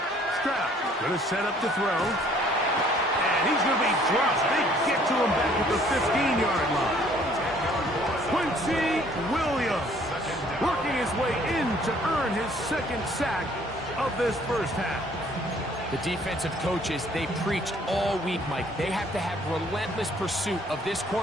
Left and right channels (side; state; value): both; normal; correlation 0.59